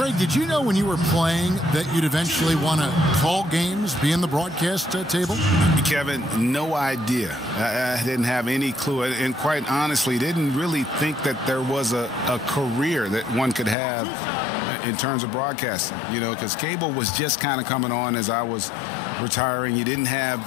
did you know when you were playing that you'd eventually want to call games, be in the broadcast table? Kevin, no idea. I didn't have any clue. And quite honestly, didn't really think that there was a career that one could have in terms of broadcasting, you know, because cable was just kind of coming on as I was retiring. You didn't have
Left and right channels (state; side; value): drops out; right; at 13.8 s